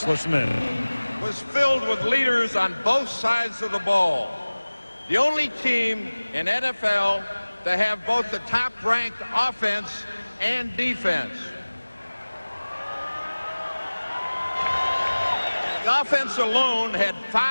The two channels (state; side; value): inverted; both; correlation -1.00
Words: listen in. Was filled with leaders on both sides of the ball. The only team in NFL to have both the top-ranked offense and defense. The offense alone had